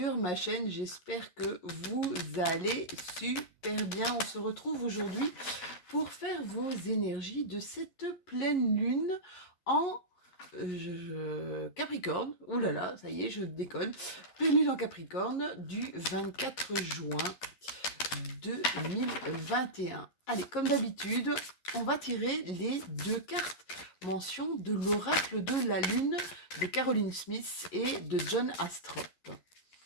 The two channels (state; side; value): late; right; 11 ms